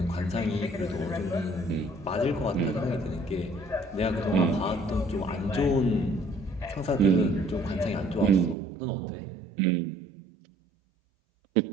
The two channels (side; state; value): left; drops out; at 8.6 s